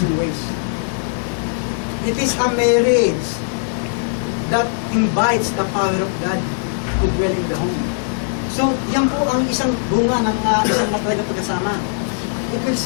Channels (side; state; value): right; silent; 66 dB below the other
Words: ways. It is a marriage that invites the power of God to dwell in the home. So, yan po ang isang bunga ng isang matatag na pagkasama. It will